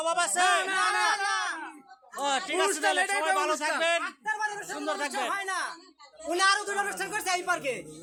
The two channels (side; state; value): both; identical; correlation 1.00